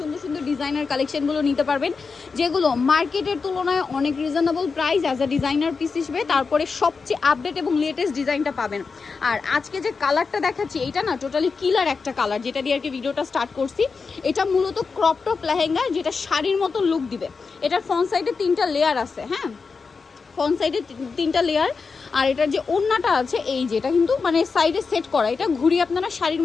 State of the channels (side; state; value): right; quieter; 4.9 dB